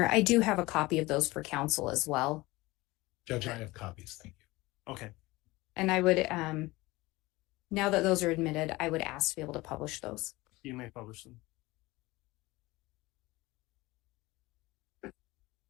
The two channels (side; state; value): right; quieter; 20.8 dB